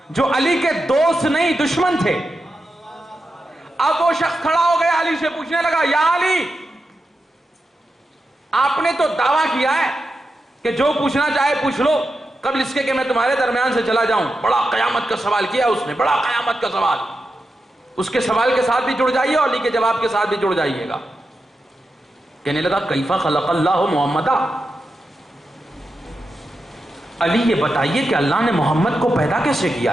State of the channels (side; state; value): both; normal; correlation 0.89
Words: جو علی کے دوست نہیں دشمن تھے. اب وہ شخص کھڑا ہو گیا علی سے پوچھنے لگا یا علی آپ نے تو دعویٰ کیا ہے کہ جو پوچھنا چاہے پوچھ لو قبل اس کے کہ میں تمہارے درمیان سے چلا جاؤں. بڑا قیامت کا سوال کیا اس نے، بڑا قیامت کا سوال. اس کے سوال کے ساتھ بھی جڑ جائیے اور علی کے جواب کے ساتھ بھی جڑ جائیے گا. کہنے لگا کیفا خلق اللہ محمدا، علی یہ بتائیے کہ اللہ نے محمد کو پیدا کیسے